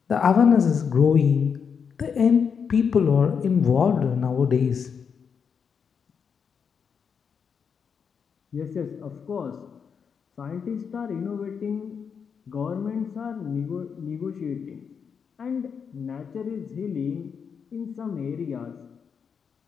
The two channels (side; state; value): right; quieter; 6.6 dB